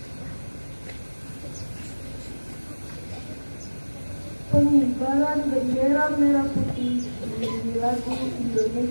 Pengibaran bendera merah putih menjadi lagu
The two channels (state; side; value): inverted; both; correlation -1.00